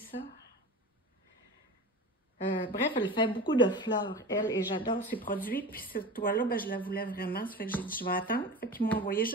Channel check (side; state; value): both; normal; correlation 0.32